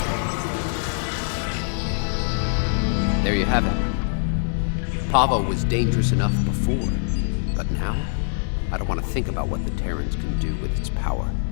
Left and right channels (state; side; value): silent; right; digital silence